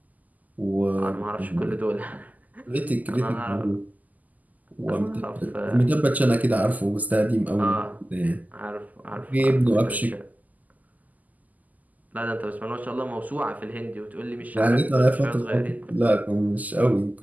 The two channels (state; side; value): late; left; 0.080 ms